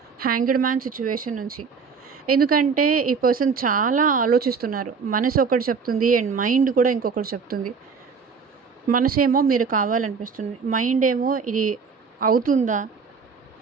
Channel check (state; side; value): quieter; left; 5.6 dB